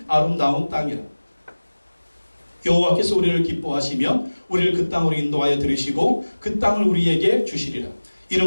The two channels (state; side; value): inverted; both; correlation -1.00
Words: 아름다운 땅이라. 여호와께서 우리를 기뻐하시면 우리를 그 땅으로 인도하여 들으시고 그 땅을 우리에게 주시리라.